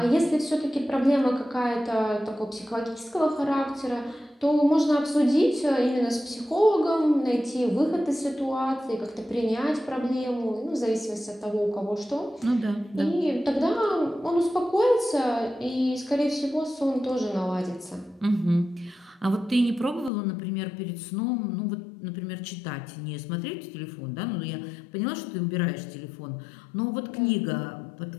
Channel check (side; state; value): right; drops out; at 20.1 s